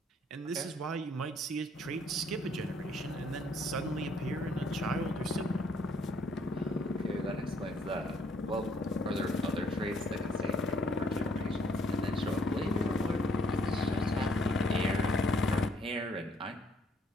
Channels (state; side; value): normal; both; correlation 0.66